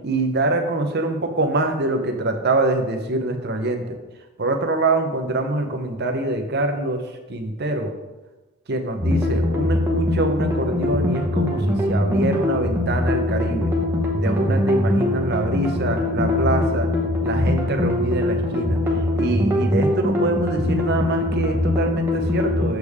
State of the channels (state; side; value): normal; both; correlation 0.45